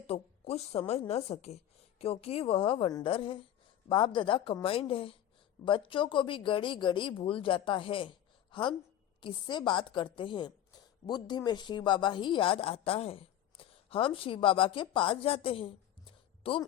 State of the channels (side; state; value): right; quieter; 11.3 dB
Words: कुछ समझ न सके, क्योंकि वह वंडर है। बाप दादा कंबाइंड है। बच्चों को भी गड़ी गड़ी भूल जाता है। हम किससे बात करते हैं? बुद्धि में शिव बाबा ही याद आता है। हम शिव बाबा के पास जाते हैं। तुम